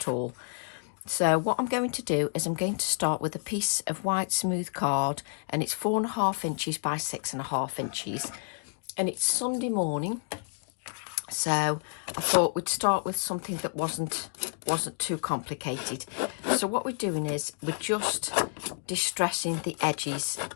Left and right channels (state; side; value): silent; right; 58 dB below the other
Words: all. So what I'm going to do is I'm going to start with a piece of white smooth card, and it's 4.5 inches by 6.5 inches. And it's Sunday morning, so I thought we'd start with something that wasn't too complicated. So what we're doing is we're just distressing the edges